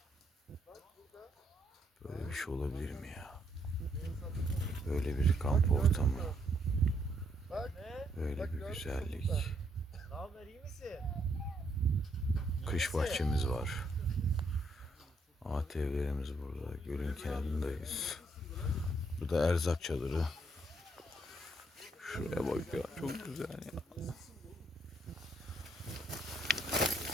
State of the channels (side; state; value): both; normal; correlation 0.72